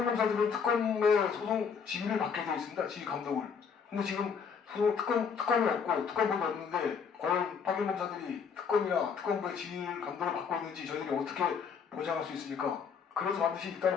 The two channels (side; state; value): right; quieter; 6.3 dB